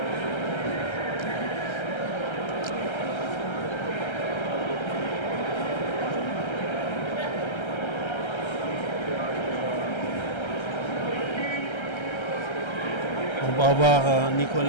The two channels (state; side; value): late; right; 1.3 ms